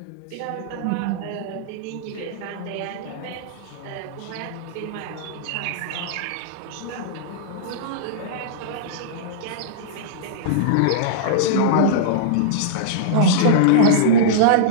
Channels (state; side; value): different; both; correlation -0.03